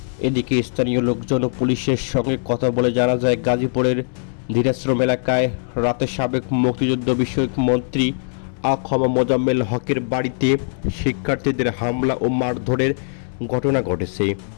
এদিকে স্থানীয় লোকজন ও পুলিশের সঙ্গে কথা বলে জানা যায়, গাজীপুরের ধীরাশ্রম এলাকায় রাতে সাবেক মুক্তিযুদ্ধ বিষয়ক মন্ত্রী আ.খ.ম. মোজাম্মেল হকের বাড়িতে শিক্ষার্থীদের হামলা ও মারধরের ঘটনা ঘটেছে।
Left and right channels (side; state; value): right; silent; digital silence